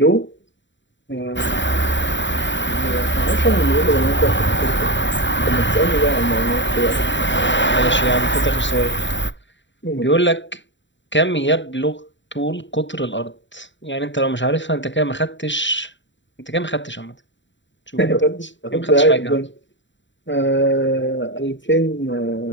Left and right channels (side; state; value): right; late; 0.54 ms